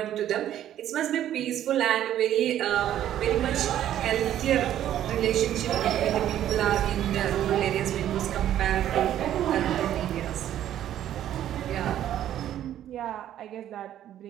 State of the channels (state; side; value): quieter; left; 11.5 dB